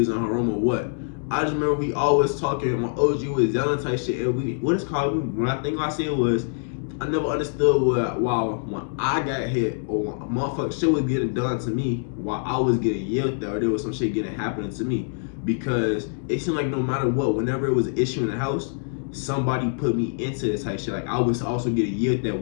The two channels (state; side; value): silent; right; digital silence